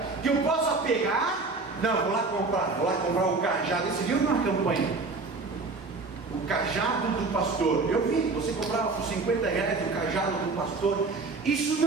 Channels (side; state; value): left; quieter; 3.8 dB